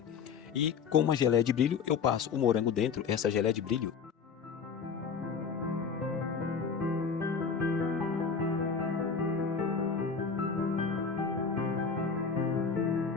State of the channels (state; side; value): quieter; right; 5.8 dB